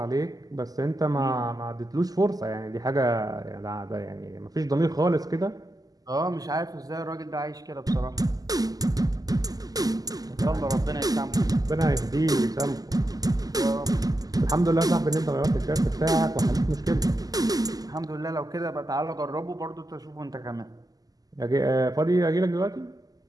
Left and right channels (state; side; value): late; left; 0.18 ms